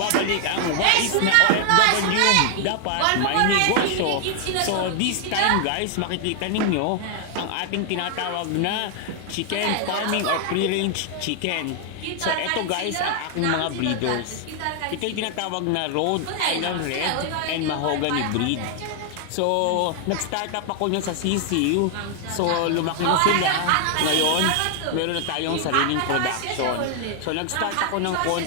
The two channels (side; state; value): both; different; correlation 0.00